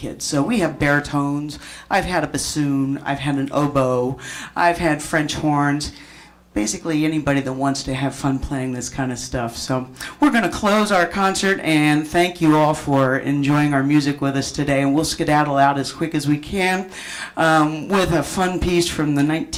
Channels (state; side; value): identical; both; correlation 1.00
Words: So we have baritones, I've had a bassoon, I've had an oboe, I've had French horns. Basically anybody that wants to have fun playing this kind of stuff. So we're going to close our concert and thank you all for enjoying our music with us today. And we'll skedaddle out as quick as we can with a fun piece from the